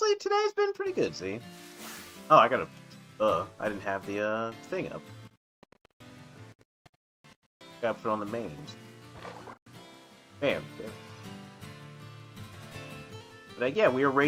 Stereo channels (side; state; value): both; identical; correlation 1.00